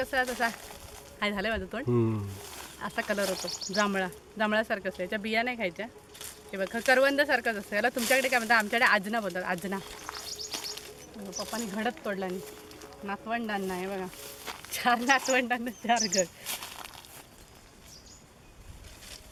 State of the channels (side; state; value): both; identical; correlation 1.00